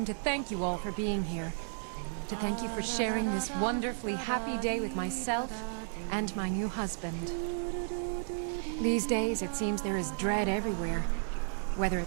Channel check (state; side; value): silent; left; digital silence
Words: to thank you all for being here. To thank you for sharing this wonderfully happy day with myself and my new husband. These days, it seems there is dread everywhere, whether